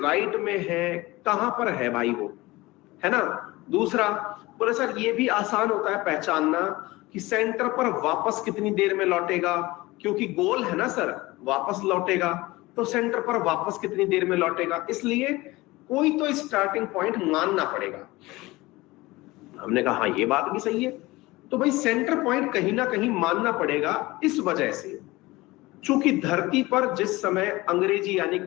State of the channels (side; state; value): right; quieter; 20.5 dB